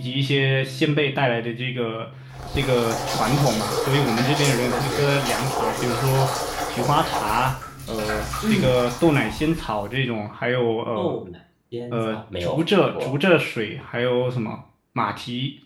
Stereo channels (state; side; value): identical; both; correlation 1.00